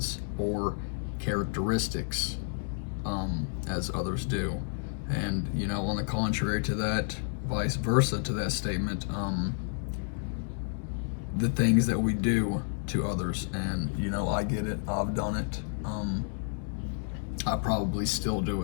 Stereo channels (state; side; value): silent; right; digital silence